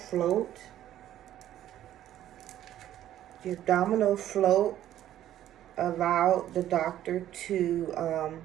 The abdominal float allowed the doctor to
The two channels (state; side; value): quieter; left; 12.3 dB